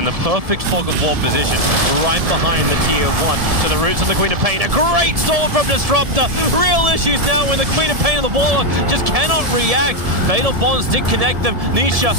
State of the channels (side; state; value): left; late; 1.7 ms